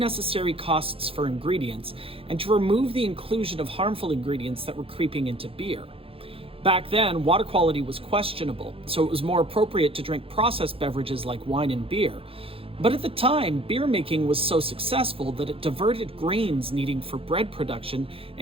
costs for ingredients and to remove the inclusion of harmful ingredients that were creeping into beer. Back then, water quality was questionable, so it was more appropriate to drink processed beverages like wine and beer. But at the time, beer making was so successful that it diverted grains needed for bread production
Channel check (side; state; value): left; late; 0.27 ms